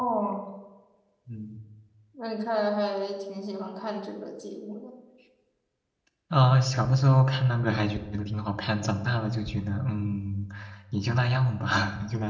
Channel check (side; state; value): both; identical; correlation 1.00